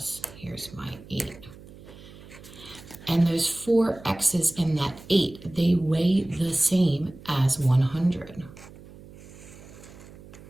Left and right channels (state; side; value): noise; right; hum, 19 dB below the sound